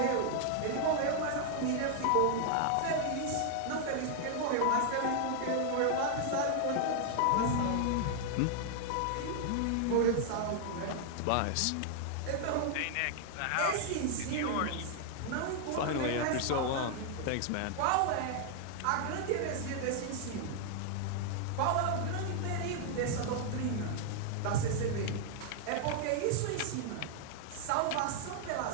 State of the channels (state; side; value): different; both; correlation 0.00